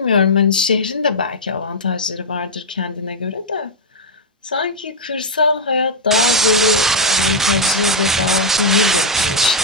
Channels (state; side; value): normal; both; correlation -0.03